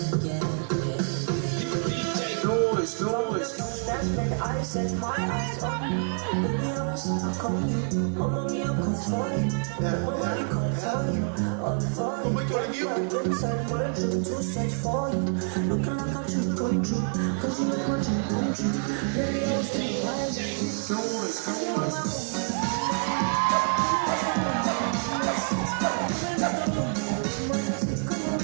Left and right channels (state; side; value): silent; left; 60 dB below the other